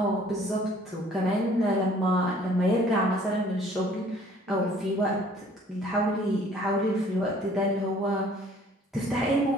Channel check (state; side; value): normal; both; correlation 0.56